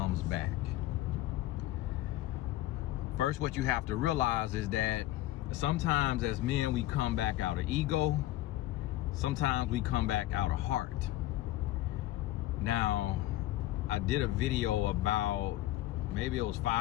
back. First, what you have to realize is that sometimes as men, we come back out of ego. Sometimes we come back out of heart. Now, I did a video about maybe it was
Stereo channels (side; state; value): right; quieter; 15.5 dB